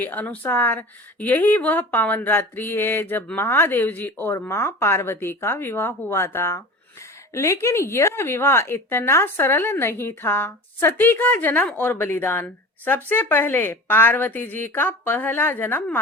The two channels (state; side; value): normal; both; correlation 0.36